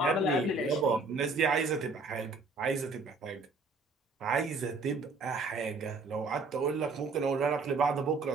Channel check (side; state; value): left; quieter; 3.7 dB